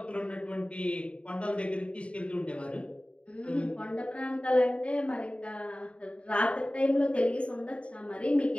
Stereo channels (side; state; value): right; late; 0.061 ms